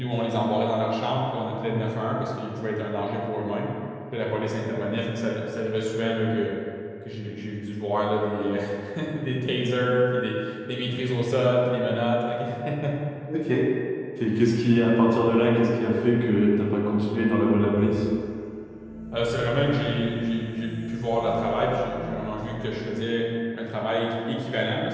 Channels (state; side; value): identical; both; correlation 1.00